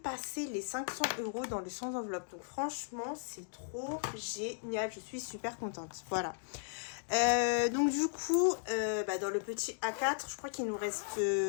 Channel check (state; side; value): silent; right; digital silence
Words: les 500 € dans le sans enveloppe. Donc franchement, c'est trop génial. Je suis super contente. Voilà. Donc du coup, dans le petit A4, je crois qu'il nous reste